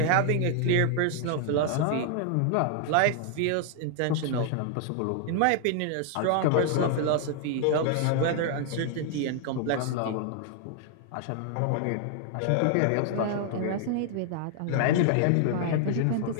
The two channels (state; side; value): different; both; correlation 0.00